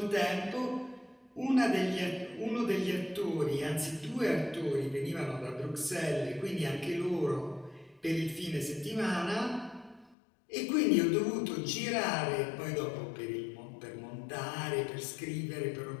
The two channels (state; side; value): drops out; right; at 10.2 s